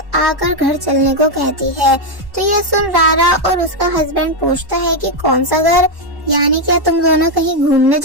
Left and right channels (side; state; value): left; late; 1.1 ms